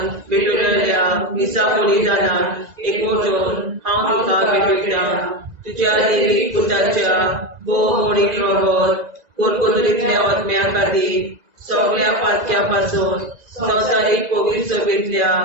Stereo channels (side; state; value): left; late; 2.0 ms